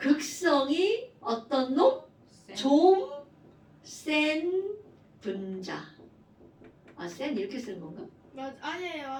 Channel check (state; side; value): identical; both; correlation 1.00